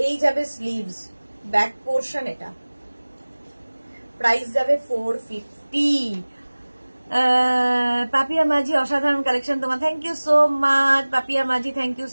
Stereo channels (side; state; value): both; inverted; correlation -1.00